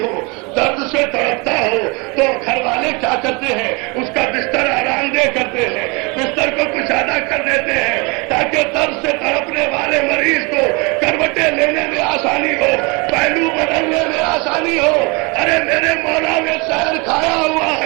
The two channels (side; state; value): left; quieter; 29.2 dB